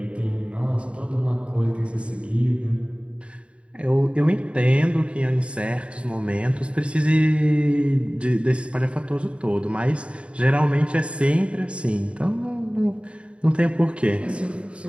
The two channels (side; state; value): left; late; 0.059 ms